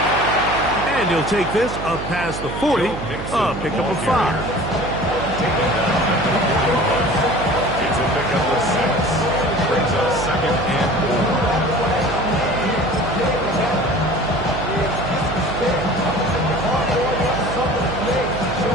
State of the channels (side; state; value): right; noise; hum, 8 dB below the sound